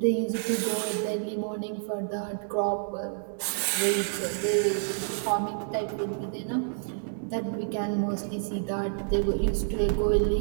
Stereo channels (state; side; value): silent; left; digital silence